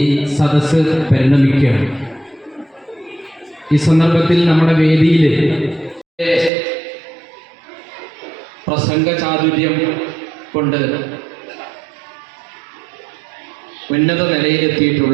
സദസ്സ് പരിണമിക്കുകയാണ്. ഈ സന്ദർഭത്തിൽ നമ്മുടെ വേദിയിൽ പ്രസംഗ ചാതുര്യം കൊണ്ട് ഉന്നത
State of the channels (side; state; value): left; drops out; at 6.5 s